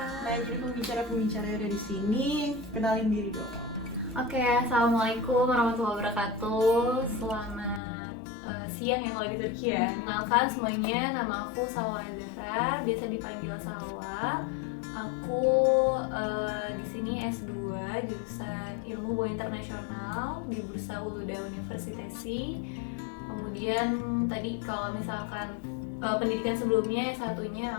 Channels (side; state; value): right; drops out; at 7.8 s